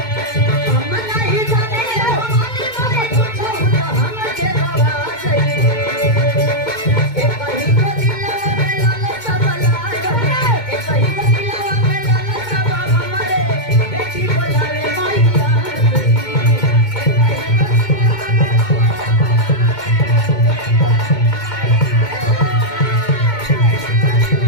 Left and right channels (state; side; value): late; right; 2.2 ms